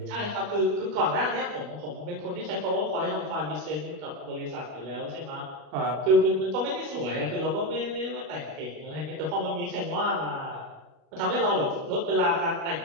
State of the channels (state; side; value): late; left; 40 ms